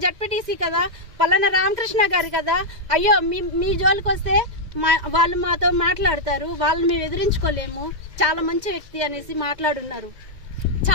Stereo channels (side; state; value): left; late; 2.0 ms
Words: జడ్పీటీసీ కదా, పలానా రామకృష్ణ గారు కదా. అయ్యో మీ జోలికి వస్తే వాళ్ళు మాతో మాట్లాడతారు, వాళ్ళని మేము ఎదిరించుకోలేము, చాలా మంచి వ్యక్తి అనేసి మాట్లాడున్నారు